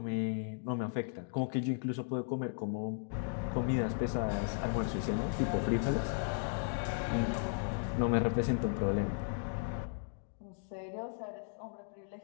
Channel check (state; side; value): silent; right; digital silence